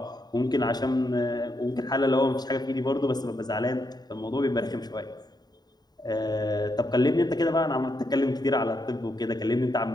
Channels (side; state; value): right; late; 0.20 ms